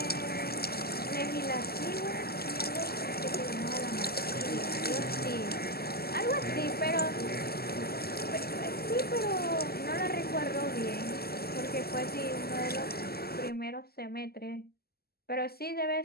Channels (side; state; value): right; late; 0.46 ms